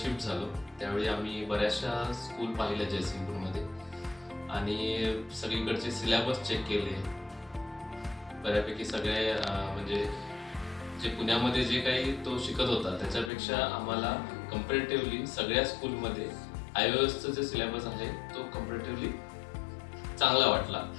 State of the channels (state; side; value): drops out; right; at 13.3 s